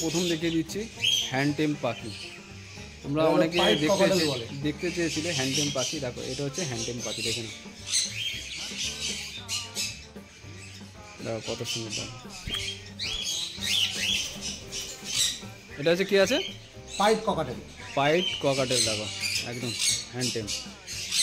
প্রথম দেখিয়ে দিচ্ছি হ্যান্ডটেম পাখি। তোমরা অনেকে দেখতে চেয়েছিলে হ্যান্ডটেম পাখি। দেখো এটা হচ্ছে হ্যান্ডটেম পাখি, দেখে নাও। দেখো কত সুন্দর। এটা হচ্ছে কি আছে? Pint cockatiel. পাইট ককাটেল, দেখো একদম হ্যান্ডটেম।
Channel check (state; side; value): identical; both; correlation 1.00